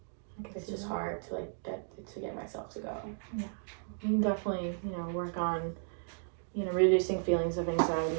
It's just hard to like get myself to go. Yeah, you can definitely, you know, work on, you know, reducing feelings of anxiety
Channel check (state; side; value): silent; left; digital silence